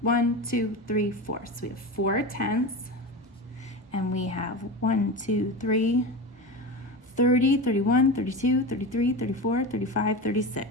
1, 2, 3, 4. So we have 4 tenths. And we have 1, 2, 3, 30, 31, 32, 33, 34, 35,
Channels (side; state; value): both; normal; correlation 0.25